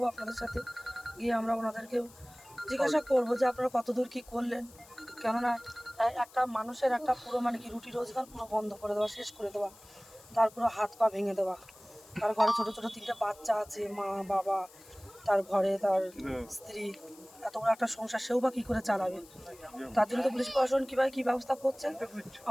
আপনাদের সাথে, গিয়ে আমরা ওনাদেরকে জিজ্ঞাসা করবো যে আপনারা কতদূর কী করলেন। কেননা একটা মানুষের একটা পুরো মানে কি রুটি রোজগার পুরো বন্ধ করে দেওয়া, শেষ করে দেওয়া, তার পুরো হাত পা ভেঙে দেওয়া। তার ঘরে ছোটো ছোটো 3টে বাচ্চা আছে, মা বাবা, তার ঘরে তার স্ত্রী, এত বড় একটা সংসার সেও বা কী করে চালাবে। তার জন্য তো পুলিশ প্রশাসন কীভাবে কী ব্যবস্থা করছে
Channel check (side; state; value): left; noise; hiss, 23 dB below the sound